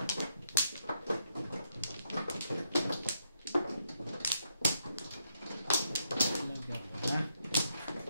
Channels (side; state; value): both; inverted; correlation -0.79